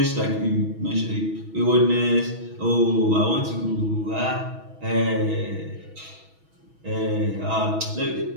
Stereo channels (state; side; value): late; left; 6.2 ms